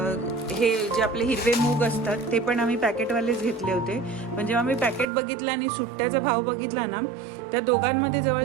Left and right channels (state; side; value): drops out; left; at 5.1 s